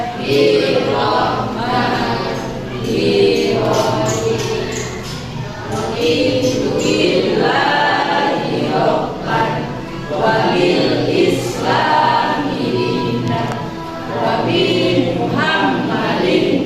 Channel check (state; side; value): identical; both; correlation 1.00